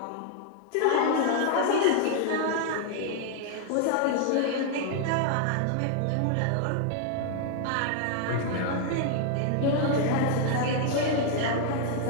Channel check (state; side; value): different; both; correlation 0.00